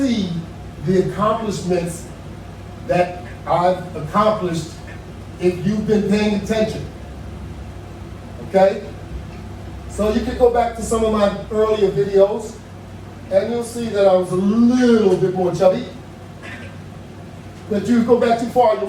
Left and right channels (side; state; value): both; identical; correlation 1.00